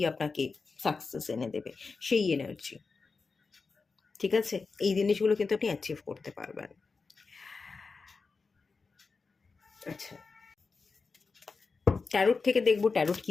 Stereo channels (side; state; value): right; quieter; 4.5 dB